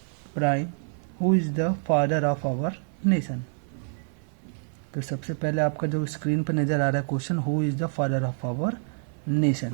prime? Who is the father of our nation? तो सबसे पहले आपका जो स्क्रीन पर नजर आ रहा है question, who is the father of our nation.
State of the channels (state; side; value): silent; left; 60 dB below the other